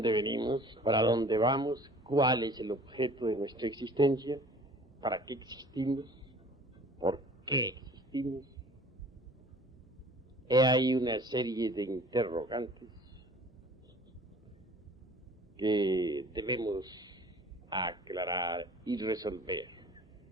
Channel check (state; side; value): normal; both; correlation 0.48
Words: venimos? ¿Para dónde vamos? ¿Cuál es el objeto de nuestra existencia? ¿Para qué existimos? ¿Por qué existimos? He ahí una serie de interrogantes que debemos aclarar y resolver.